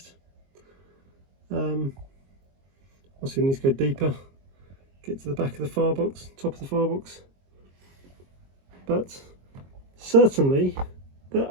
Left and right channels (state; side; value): late; left; 22 ms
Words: Obviously we need to go deeper, get to the back of the firebox, top of the firebox, but certainly that